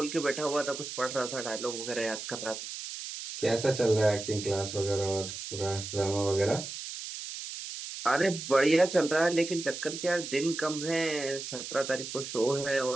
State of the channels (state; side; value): noise; right; hiss, 8 dB below the sound